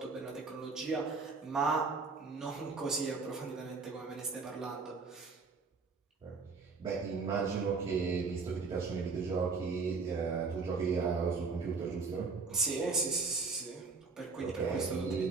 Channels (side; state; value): left; quieter; 4.5 dB